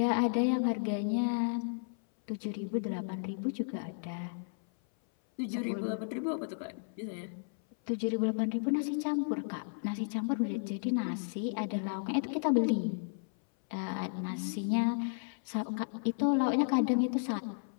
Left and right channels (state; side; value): silent; right; 55 dB below the other